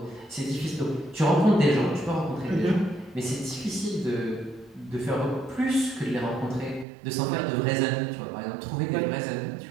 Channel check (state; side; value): drops out; left; at 6.9 s